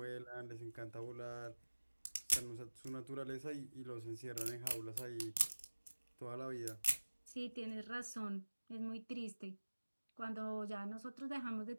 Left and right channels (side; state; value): both; inverted; correlation -1.00